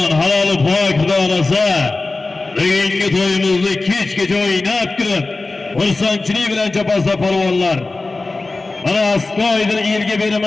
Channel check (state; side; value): quieter; right; 3.4 dB